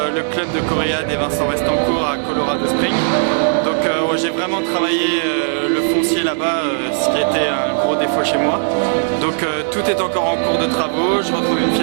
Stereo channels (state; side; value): silent; left; 61 dB below the other